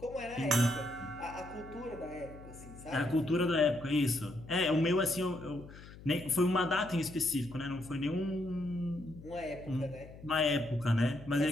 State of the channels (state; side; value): noise; left; hum, 17 dB below the sound